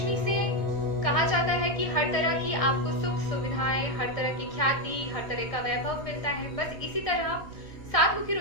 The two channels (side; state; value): right; late; 1.6 ms